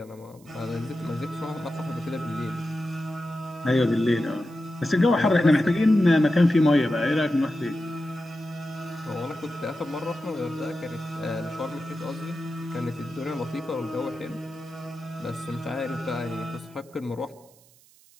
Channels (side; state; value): right; noise; hiss, 28 dB below the sound